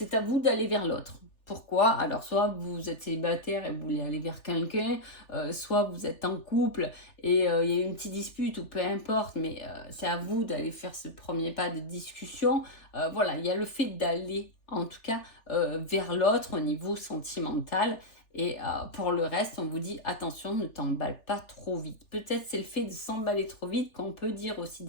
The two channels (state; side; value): late; right; 3.4 ms